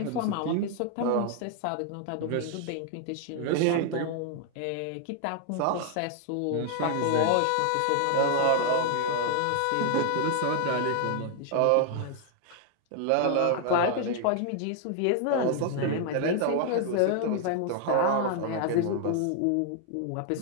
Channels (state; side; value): different; both; correlation 0.00